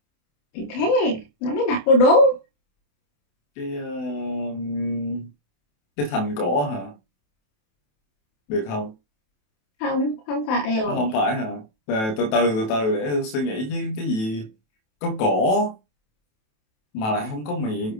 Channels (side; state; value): right; late; 27 ms